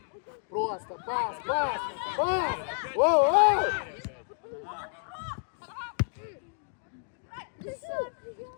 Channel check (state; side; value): silent; right; 58 dB below the other